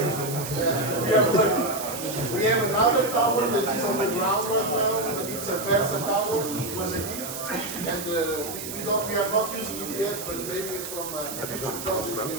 We have another tower that is on the ground right now, but it's a Versa tower. It was a gift, and we are not using it yet, but maybe it's from a future project we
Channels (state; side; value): noise; right; hiss, 8 dB below the sound